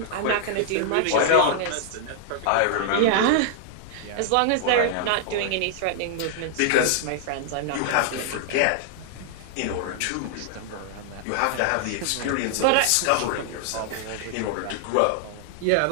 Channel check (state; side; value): different; both; correlation -0.01